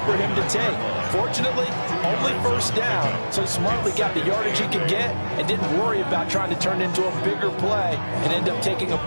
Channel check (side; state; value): both; inverted; correlation -1.00